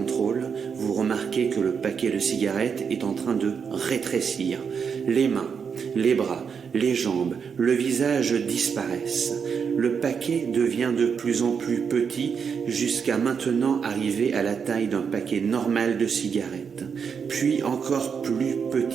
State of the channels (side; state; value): left; quieter; 6.5 dB